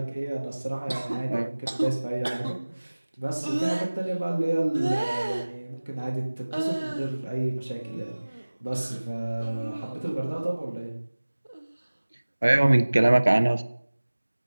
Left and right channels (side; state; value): both; inverted; correlation -1.00